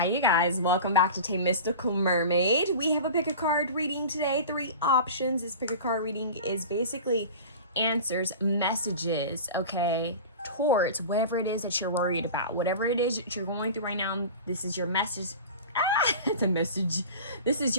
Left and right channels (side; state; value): both; inverted; correlation -0.35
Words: you guys, welcome back to Mystical Mermaid. We have a pick a card reading today, 3 options. This pick a card reading is basically answers, messages, okay, towards whatever it is that you're worried about. Whatever it is that you're going through right now, this is your message. It's a message. This is